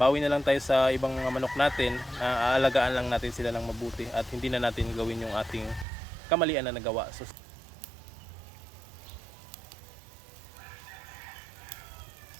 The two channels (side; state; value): left; drops out; at 5.9 s